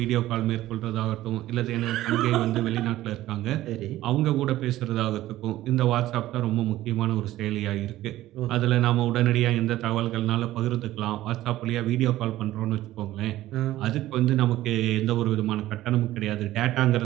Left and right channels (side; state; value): left; quieter; 15.1 dB